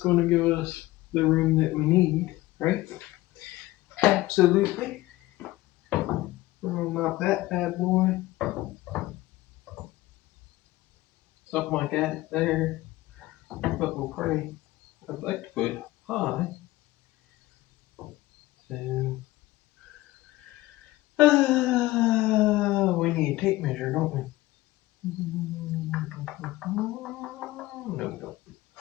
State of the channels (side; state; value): right; quieter; 18.1 dB